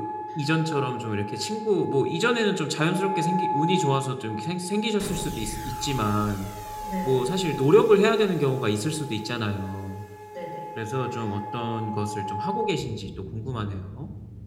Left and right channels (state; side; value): identical; both; correlation 1.00